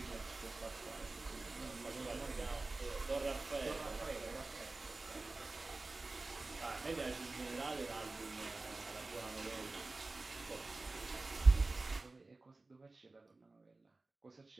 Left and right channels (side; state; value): left; quieter; 3.3 dB